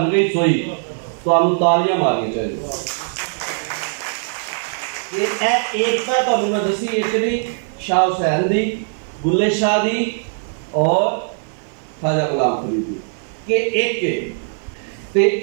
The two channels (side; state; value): left; silent; 56 dB below the other